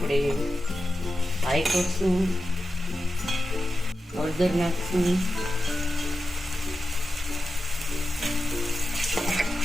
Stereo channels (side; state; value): both; normal; correlation 0.91